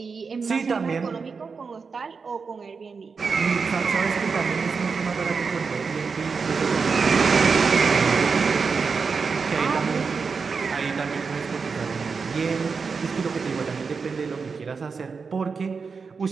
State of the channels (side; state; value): left; quieter; 5.1 dB